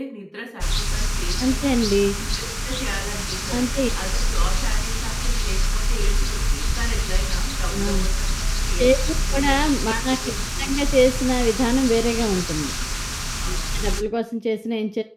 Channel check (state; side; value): identical; both; correlation 1.00